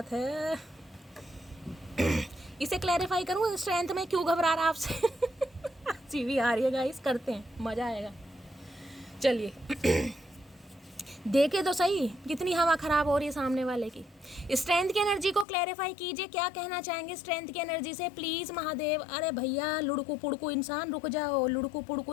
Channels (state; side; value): drops out; right; at 15.5 s